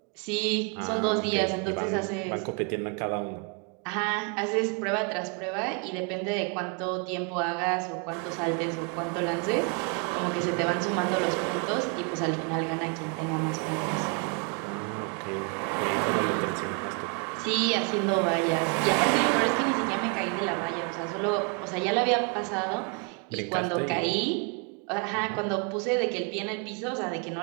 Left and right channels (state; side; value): quieter; left; 36.1 dB